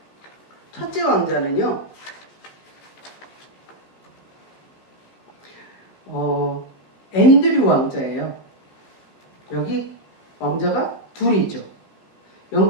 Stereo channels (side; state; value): right; late; 15 ms